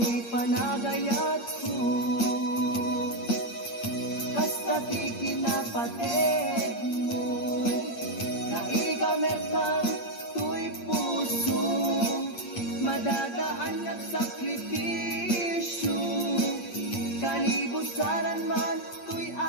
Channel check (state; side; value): late; right; 8.6 ms